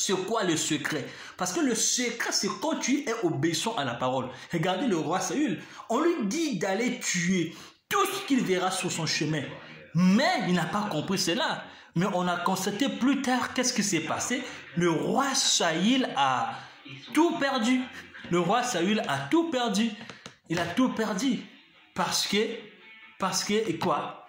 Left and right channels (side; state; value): both; identical; correlation 1.00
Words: quoi le secret? Parce que le secret, c'est quand tu es obéissant à la parole. Regardez le roi Saül. On lui dit d'aller tuer tout ce qu'il verra sur son chemin. Mais il n'a pas compris cela. Mais on a constaté plus tard qu'est-ce qui s'est passé. Le roi Saül a tout perdu. Le roi Saül a tout perdu. Il a tout perdu. Parce que, et quoi?